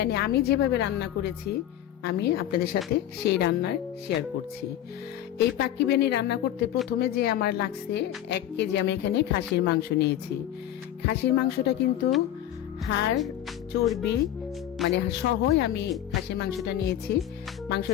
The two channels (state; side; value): quieter; right; 11.7 dB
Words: আমি যেভাবে রান্না করেছি আমি আপনাদের সাথে সেই রান্নার শেয়ার করছি। এই পাক্কি বিরিয়ানি রান্না করতে প্রথমে যে আমার লাগছে 1 কেজি আমি এখানে খাসির মাংস নিয়েছি। খাসির মাংসটা কিন্তু হাড় চর্বি মানে সহই আমি খাসির মাংসটা নিয়েছি।